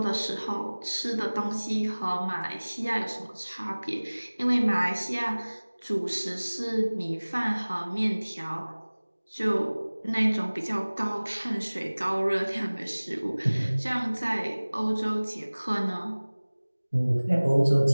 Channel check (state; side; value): inverted; both; correlation -1.00